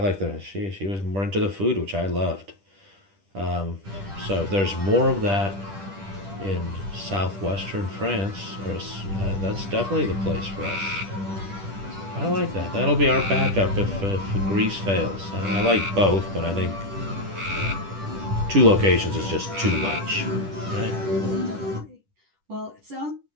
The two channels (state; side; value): late; left; 10 ms